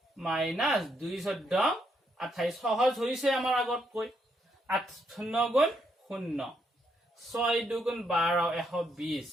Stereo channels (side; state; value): both; normal; correlation 0.77